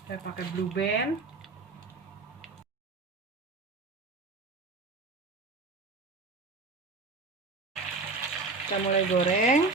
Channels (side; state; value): left; quieter; 3.6 dB